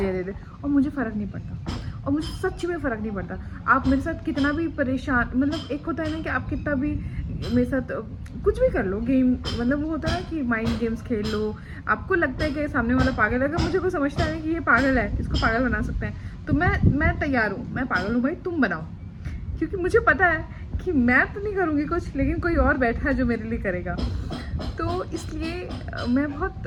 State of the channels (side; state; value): both; identical; correlation 1.00